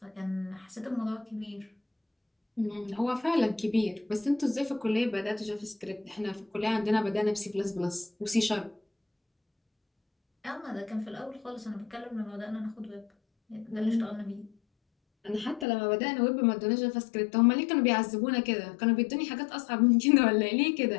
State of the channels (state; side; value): drops out; right; at 15.7 s